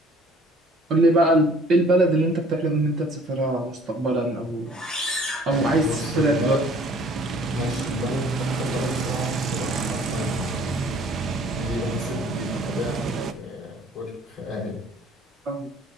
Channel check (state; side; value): normal; both; correlation 0.54